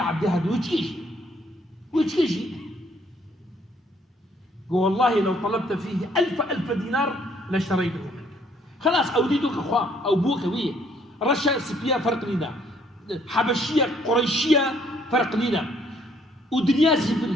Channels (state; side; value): normal; both; correlation 0.65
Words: هذا ويتكيشي والله لو طلبت فيه ألف دينار لاشتريته منك خلاص أوديتك أخوة أو بوك ويه رشا سبيا فرق لنا حبشية قريشية فرق لنا ودنيا